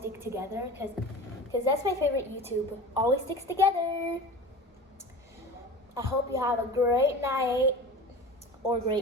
together because that's my favorite YouTube. Always sticks together. I hope you have a great night or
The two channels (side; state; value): both; normal; correlation 0.35